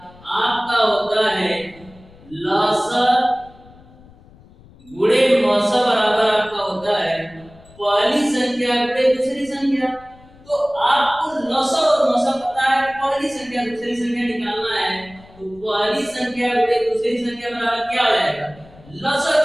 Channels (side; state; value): left; noise; rumble, 24 dB below the sound